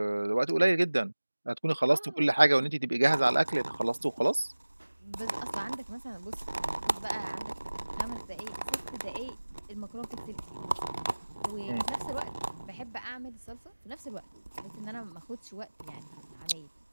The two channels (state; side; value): inverted; both; correlation -1.00